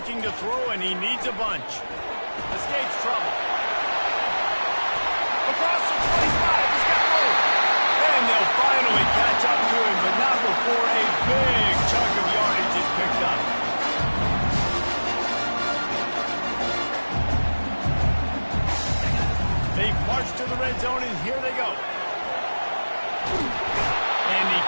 to throw, and he needs a bunch. Escapes trouble. Across the 25, he's got room. And they'll finally catch up to him, but not before a big chunk of yardage is picked up. They march to the red zone, and here they go. And he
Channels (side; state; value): both; inverted; correlation -1.00